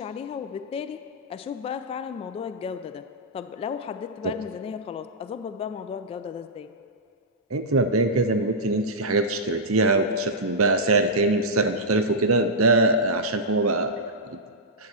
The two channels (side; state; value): both; normal; correlation -0.11